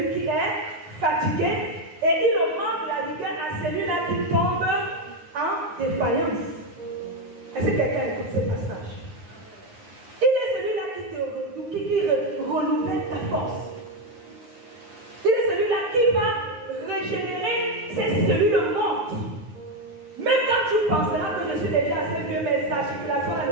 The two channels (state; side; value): late; left; 9.6 ms